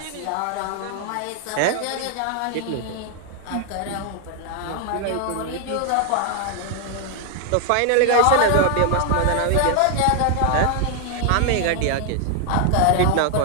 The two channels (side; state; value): both; different; correlation 0.00